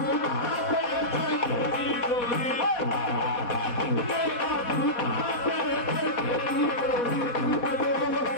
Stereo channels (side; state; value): right; late; 4.2 ms